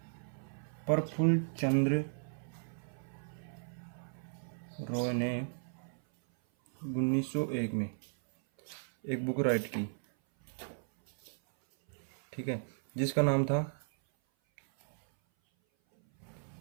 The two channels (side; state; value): left; silent; 54 dB below the other